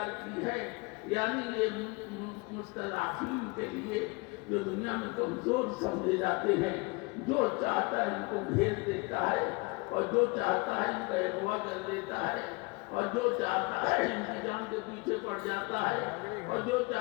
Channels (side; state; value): right; quieter; 27.3 dB